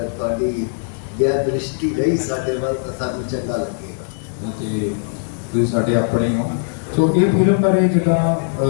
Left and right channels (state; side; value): silent; right; digital silence